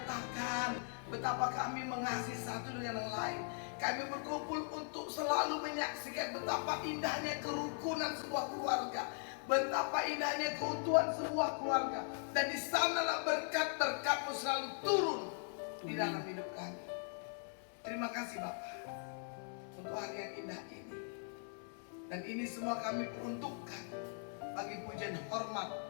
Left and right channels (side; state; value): right; silent; 51 dB below the other